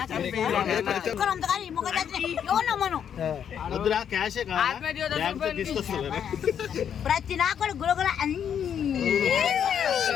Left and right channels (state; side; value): quieter; right; 8.5 dB